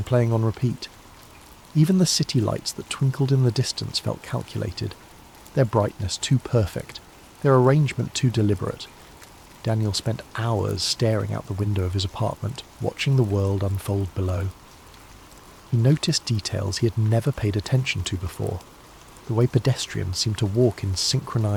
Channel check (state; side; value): identical; both; correlation 1.00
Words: playing on repeat. Even the city lights that twinkled in the distance felt calculated, their brightness too perfect, their arrangement too deliberate. Daniel spent hours staring out the window of his apartment, watching the world unfold below. He noticed details he had never paid attention to before. The way pedestrians seemed to walk in